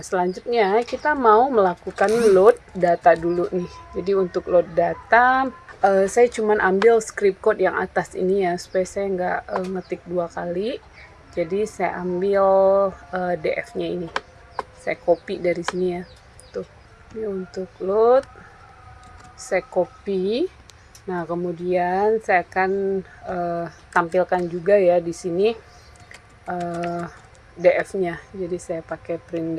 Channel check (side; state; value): both; identical; correlation 1.00